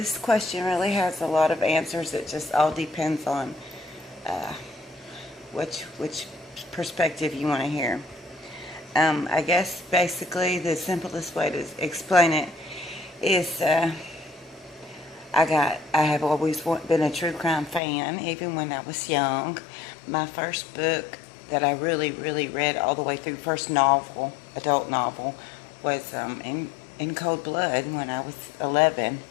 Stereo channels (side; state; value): right; drops out; at 17.8 s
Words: question really has a lot of answers. It just all depends on uh, which perspective you want to hear. I guess basically the simplest way to explain it is I have always been a true crime fan, even when I was young. My first book that I really read all the way through, first novel, adult novel, was in Cold Blood when I was 11.